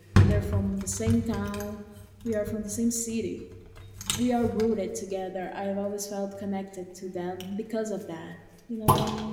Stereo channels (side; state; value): both; identical; correlation 1.00